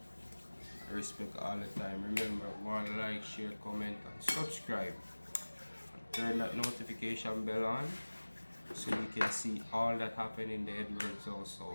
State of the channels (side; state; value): both; inverted; correlation -1.00